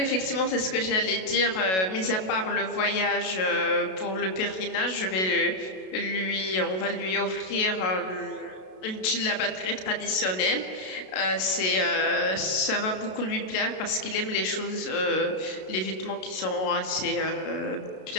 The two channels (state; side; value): late; right; 32 ms